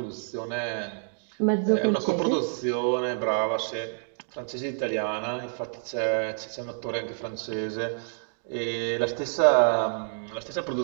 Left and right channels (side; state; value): left; silent; digital silence